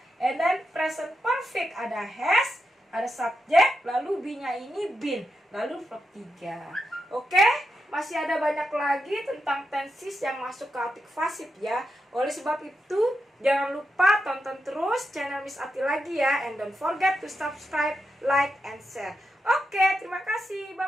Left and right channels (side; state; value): both; normal; correlation 0.86